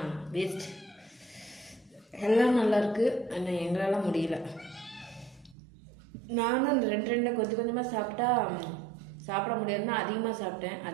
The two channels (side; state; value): left; drops out; at 5.6 s